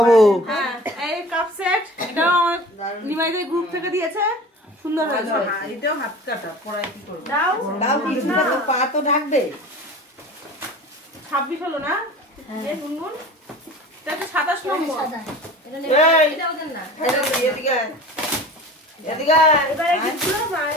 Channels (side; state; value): both; normal; correlation 0.39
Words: হ্যাঁ এই কাপ সেট এটাও আমার নিমাইদের গ্রুপ থেকে দিয়েছে, সুন্দর হয়েছে। এটাও হাত কাটা, পড়াই কি করবো? দাও দাও কিছুটা তো পা তো ঢাকবে 26 হলো না? এই গুনগুন এটা তো 27 নম্বর। এটা ওদের না। এদিকে আয়। এদিকে আয়। এবারে গিফটগুলো